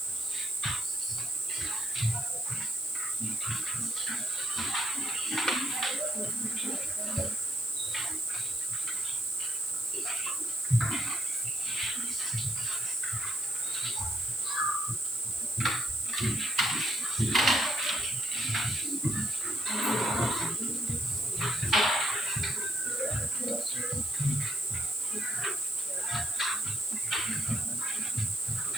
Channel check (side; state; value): left; noise; hiss, 10 dB below the sound